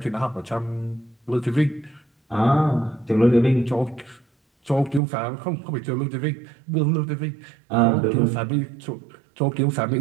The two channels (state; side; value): drops out; left; at 5.0 s